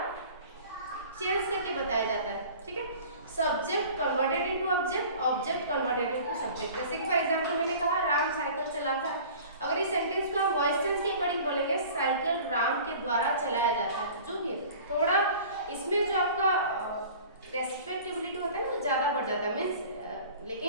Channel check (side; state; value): both; inverted; correlation -0.44